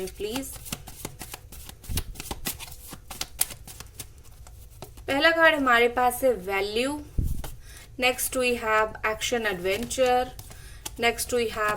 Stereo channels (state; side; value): identical; both; correlation 1.00